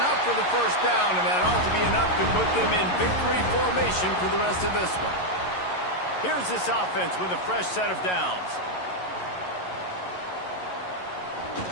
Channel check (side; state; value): right; late; 11 ms